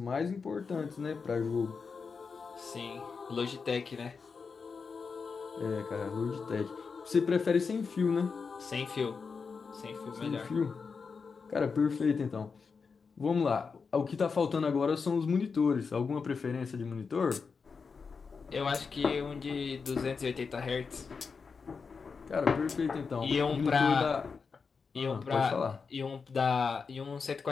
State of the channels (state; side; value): quieter; right; 5.2 dB